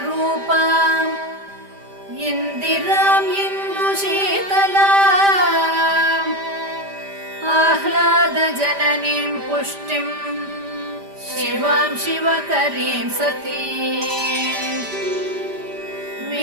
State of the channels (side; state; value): left; late; 5.0 ms